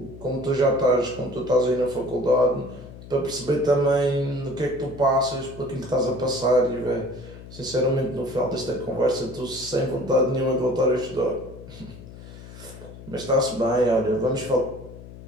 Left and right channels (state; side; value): noise; left; hum, 16 dB below the sound